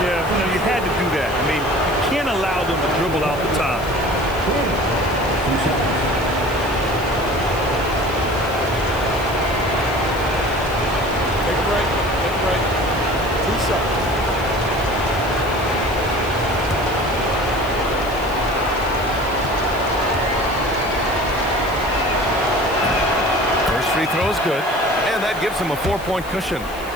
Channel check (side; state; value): left; noise; hiss, 18 dB below the sound